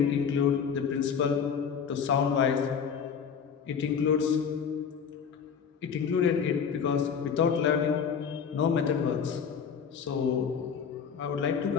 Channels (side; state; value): right; quieter; 6.9 dB